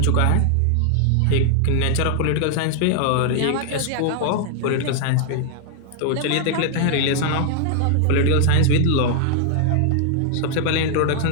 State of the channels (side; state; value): both; different; correlation 0.00